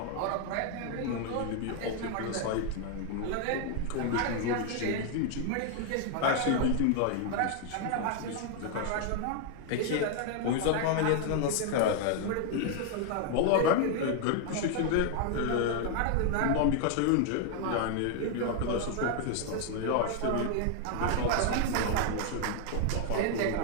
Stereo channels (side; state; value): both; different; correlation 0.00